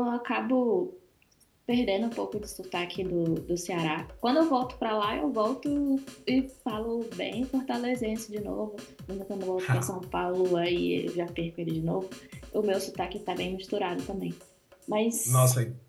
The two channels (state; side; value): identical; both; correlation 1.00